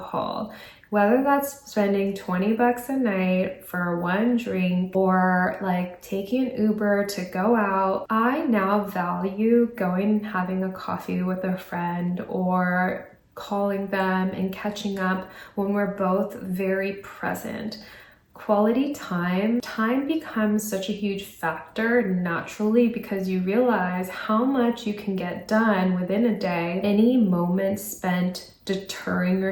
Whether that's spending 20 bucks a night for one drink or like taking an Uber to go out, I now value going and having a coffee with a friend or calling them and catching up when we're both very present. Quality time becomes such a huge factor naturally, because you realize how much you can get done within a day. Any moment spent deterring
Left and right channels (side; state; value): both; identical; correlation 1.00